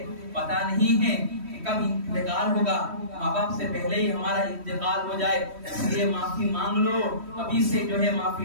پتہ نہیں ہے کب انتقال ہوگا، ماں باپ سے پہلے ہی ہمارا انتقال ہو جائے، اس لیے معافی مانگ لو، ابھی سے جو ہے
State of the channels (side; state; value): left; late; 3.1 ms